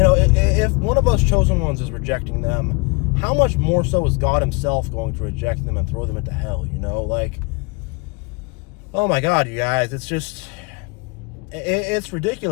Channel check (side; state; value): right; quieter; 29.4 dB